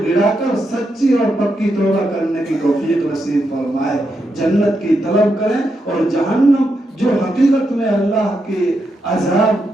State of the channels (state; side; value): normal; both; correlation 0.83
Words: گڑا کر سچی اور پکی توبہ کرنے کی توفیق نصیب فرمائے، جنت کی طلب کریں، اور جہنم جو حقیقت میں اللہ کے عذاب